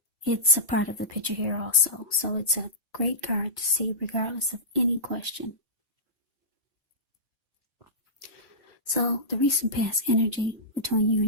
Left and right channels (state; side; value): normal; both; correlation -0.18